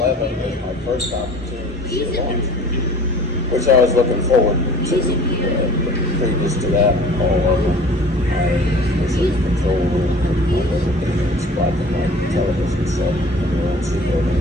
11 was my first opportunity to see a launch, which I was looking forward to. Previous to that, all of them, I was in the control room and everything was watching my television set in the ONC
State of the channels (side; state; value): both; normal; correlation 0.46